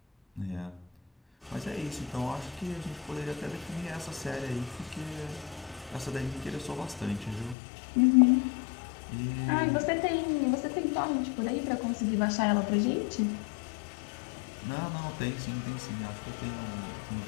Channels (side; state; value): right; drops out; at 7.6 s